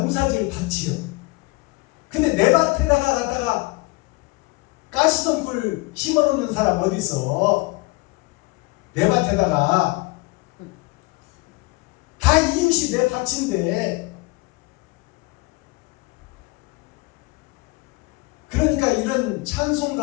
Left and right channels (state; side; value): quieter; right; 23.8 dB